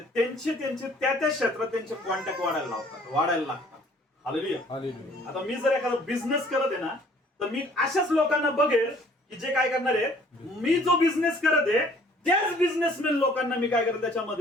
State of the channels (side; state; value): both; normal; correlation 0.57